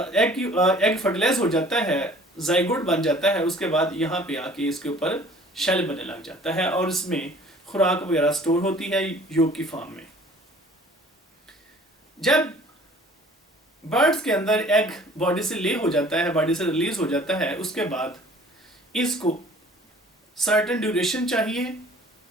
फर्टिलाइज हो जाता है, जाइगोट बन जाता है, उसके बाद यहाँ पे आके इसके ऊपर शेल बनने लग जाता है और इसमें खुराक वगैरह स्टोर होती है योग की फॉर्म में। जब बर्ड्स के अंदर एग बॉडी से ले हो जाता है, बॉडी से रिलीज हो जाता है, उसके बाद इसको सर्टेन ड्यूरेशन चाहिए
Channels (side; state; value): both; normal; correlation 0.51